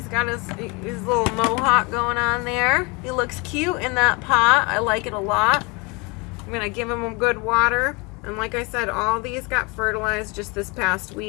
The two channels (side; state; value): right; quieter; 28.5 dB